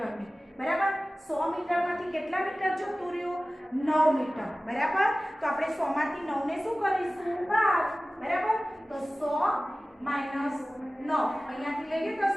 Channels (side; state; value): both; normal; correlation 0.97